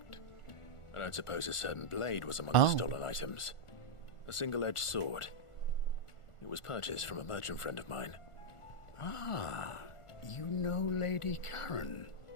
I don't suppose a certain blade was among the stolen items. A single-edged sword. It was purchased from a merchant friend of mine. Ah, you know Lady Karen?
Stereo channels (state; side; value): late; right; 1.4 ms